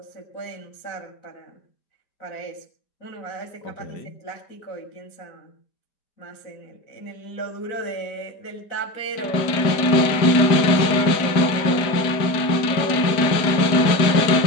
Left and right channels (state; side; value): late; right; 4.9 ms